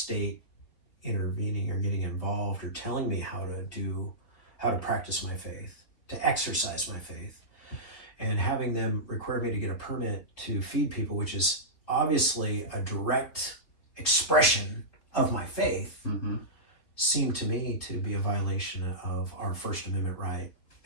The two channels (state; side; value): late; right; 3.7 ms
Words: intervening or getting involved or telling me how to practice my faith, to exercise my faith. And having them require me to get a permit to feed people, which is obviously a direct expression of my faith, seemed to me to be a violation of our First Amendment right